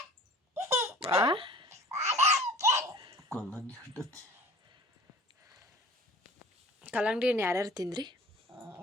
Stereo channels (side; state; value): both; normal; correlation 0.45